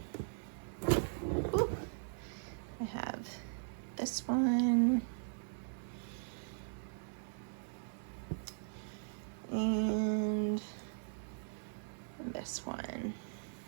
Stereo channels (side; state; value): left; silent; digital silence